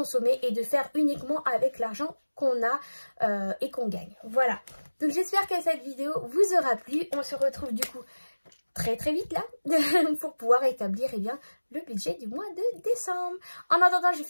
et de faire uniquement avec l'argent qu'on a et qu'on gagne. Voilà. Donc, j'espère que cette vidéo vous aura plu. On se retrouve du coup très vite là pour pouvoir établir eh bien, le budget du mois de décembre. En attendant, je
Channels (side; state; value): both; inverted; correlation -1.00